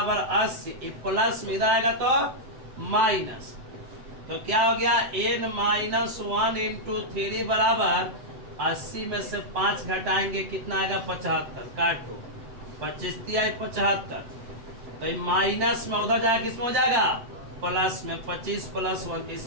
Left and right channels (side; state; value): left; late; 7.9 ms